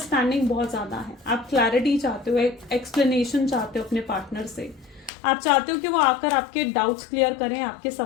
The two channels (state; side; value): drops out; right; at 5.1 s